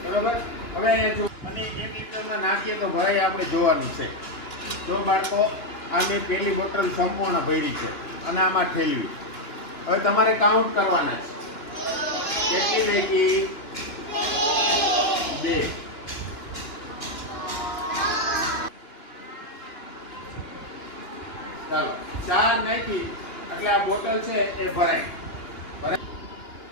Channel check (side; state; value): right; late; 2.9 ms